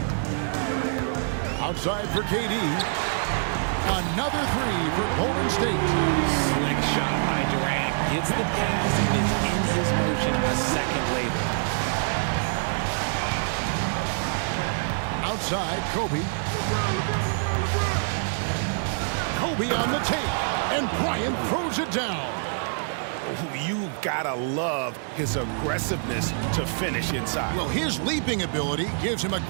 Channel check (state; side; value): silent; left; 61 dB below the other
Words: Outside for KD. Another three for Golden State. Slick shot by Durant. Gets the pass and is in his motion a second later. Outside, Kobe. Kobe on the tape. And Bryant throws it down. You gotta love his aggressiveness to finish inside. Well, his leaping ability gives him a